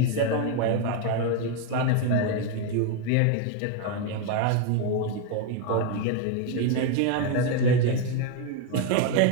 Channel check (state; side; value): different; both; correlation 0.02